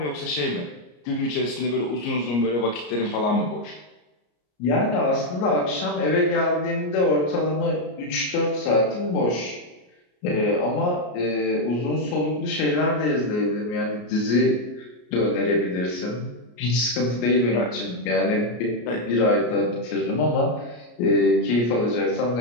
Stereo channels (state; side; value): late; right; 33 ms